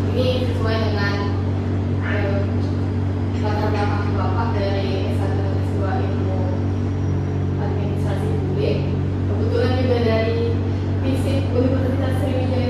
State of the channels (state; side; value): identical; both; correlation 1.00